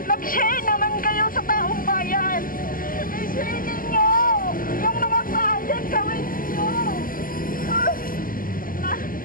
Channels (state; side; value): late; right; 0.41 ms